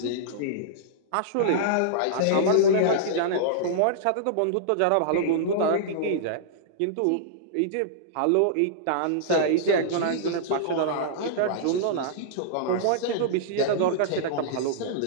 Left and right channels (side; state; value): both; different; correlation -0.02